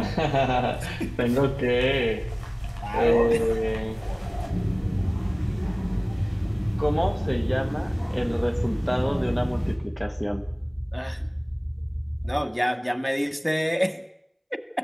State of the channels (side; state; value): both; identical; correlation 1.00